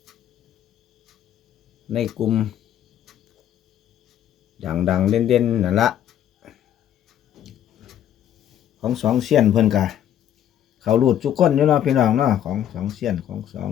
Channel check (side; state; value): right; quieter; 10.6 dB